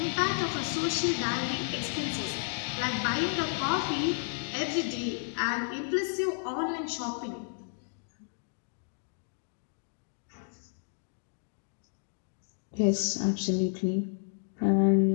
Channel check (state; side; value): silent; right; digital silence